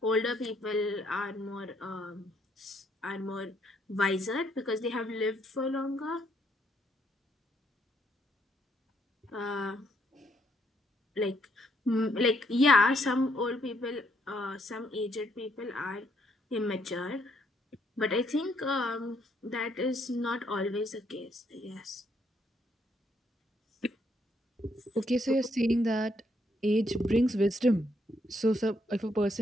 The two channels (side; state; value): both; normal; correlation 0.72